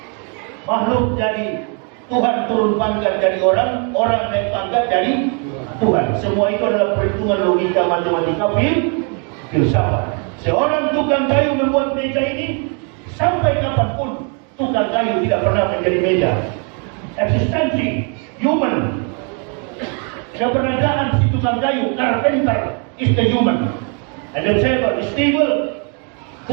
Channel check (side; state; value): left; quieter; 38.1 dB